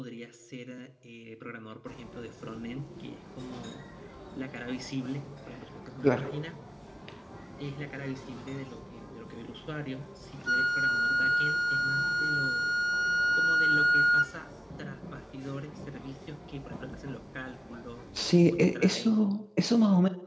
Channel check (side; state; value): both; identical; correlation 1.00